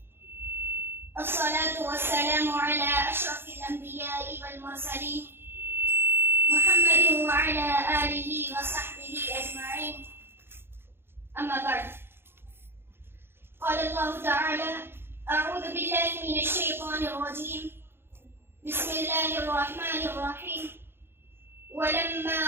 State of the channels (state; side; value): late; left; 0.11 ms